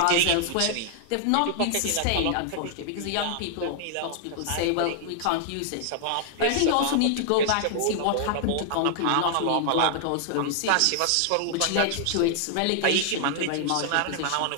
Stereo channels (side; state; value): both; different; correlation -0.01